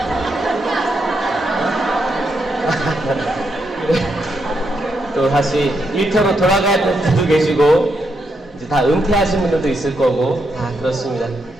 또 다시 일터로 돌아가야 될 분들도 계시고, 이제 다 은퇴하신 분들도 있을 거고, 다 그렇습니다.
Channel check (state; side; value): normal; both; correlation 0.81